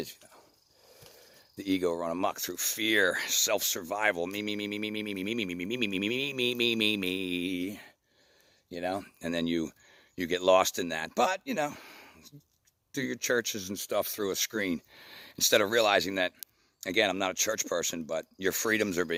you know. The ego run amok through fear, self-survival, me, you know, and then you get lost in that. But, you know, do your churches and stuff through a screen instead of realizing that, again, I'm not a church person, but your freedoms are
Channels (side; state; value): both; identical; correlation 1.00